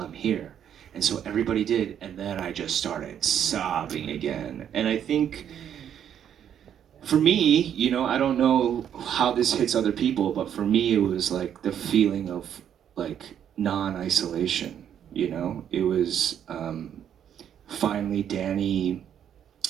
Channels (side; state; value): left; quieter; 9.3 dB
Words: here? And so everybody did, and then I just started sobbing again. And I think, for me, I don't know how this hits other people, but for me it was like the feeling of like non-isolation, It was finally Danny